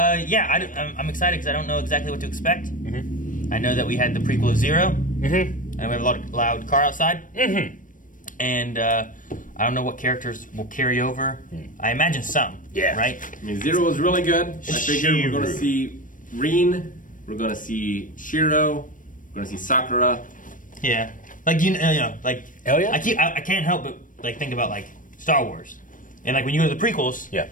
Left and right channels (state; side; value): late; right; 0.38 ms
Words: excited because I don't know exactly what to expect. I know that we had the prequel of Zero. And we have a lot of loud car outside. And I don't know what characters will carry over. I imagine some. Yeah. Right? I mean, Zero was really good. I figure we're going to Shiru. see Rin. We're going to see Shiro. We're going to see Sakura. Yeah. Like, you know, like... Hell yeah. I can't help but, like, think about, like, Star Wars. And, like, when you go to the prequels... Yeah.